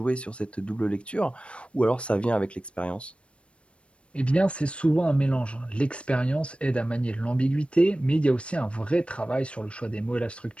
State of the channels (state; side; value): late; right; 0.060 ms